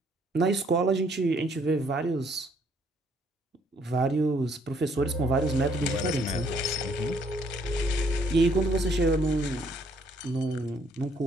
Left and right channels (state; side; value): normal; both; correlation 0.66